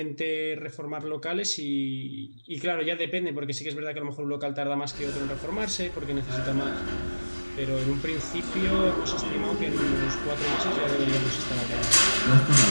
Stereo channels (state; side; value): inverted; both; correlation -1.00